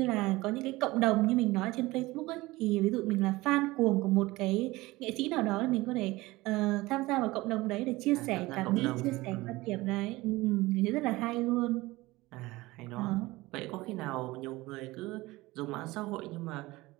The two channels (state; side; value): quieter; left; 20.0 dB